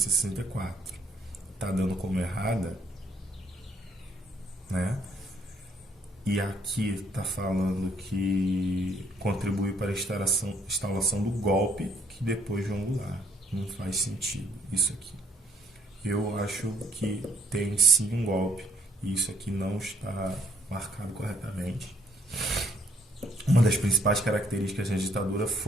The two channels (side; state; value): both; normal; correlation 0.66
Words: está dando como errada, né? E aqui está falando que contribuiu para a instalação do golpe, que depois João Goulart. Não faz sentido isso aqui. Eu acho que tem sim um golpe, e isso aqui não está marcado corretamente. Uma das principais características da ditadura